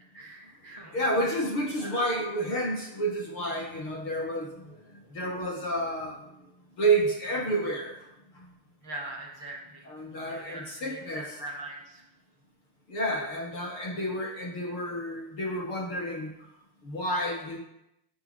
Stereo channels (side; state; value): right; late; 6.7 ms